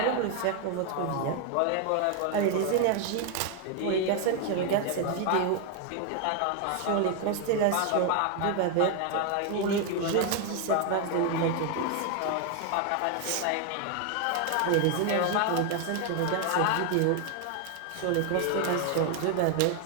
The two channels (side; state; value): both; different; correlation 0.01